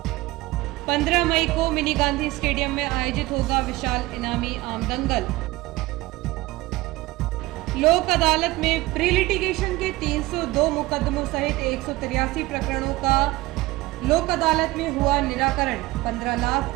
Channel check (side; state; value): left; quieter; 19.6 dB